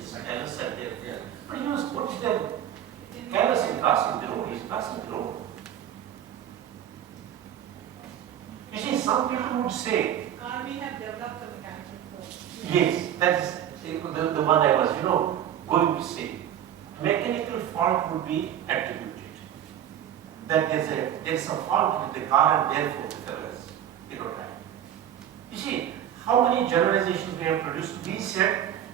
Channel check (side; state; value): left; quieter; 10.3 dB